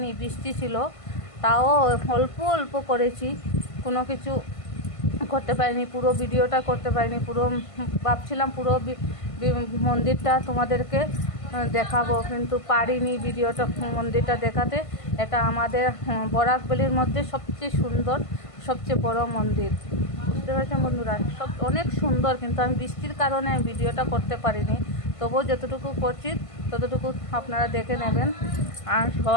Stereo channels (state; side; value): late; right; 1.5 ms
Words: বৃষ্টি ছিল, তাও অল্প অল্প করেছি, কোনো কিছু করতে পারিনি, পুরো ভিডিওটা করতে পারিনি। পুরো ভাবছিলাম পুরো মন্দিরটা তোমাদেরকে দেখাবো, কিন্তু পারিনি ভিডিওটা মন্দিরটা দেখাতে। এটা আমাদের বরাকবেলির মধ্যে সবচেয়ে সুন্দর, সবচেয়ে বড় মন্দির, বুঝতে পারছেন বন্ধুরা। সব অনেক সুন্দর, কিন্তু আমি বৃষ্টির কারণে ভিডিওটা করতে পারিনি। তবুও যতটুকু করছি ততটুকু আপনারা দেখে নেবেন, আর